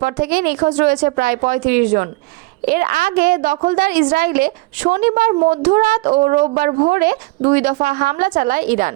থেকেই নিখোঁজ রয়েছে প্রায় ৩৫ জন। এর আগে দখলদার ইসরায়েলে শনিবার মধ্যরাত ও রোববার ভোরে ২ দফা হামলা চালায় ইরান।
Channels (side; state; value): left; quieter; 23.2 dB